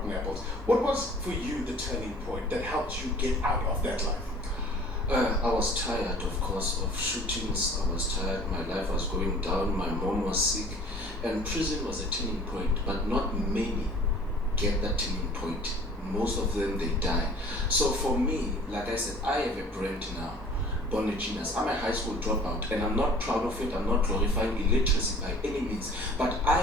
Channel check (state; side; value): normal; both; correlation 0.48